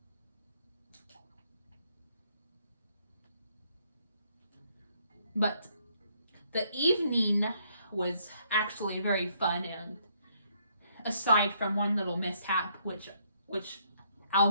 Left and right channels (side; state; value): both; inverted; correlation -0.70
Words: But the evening was actually very fun, and aside from one little mishap, which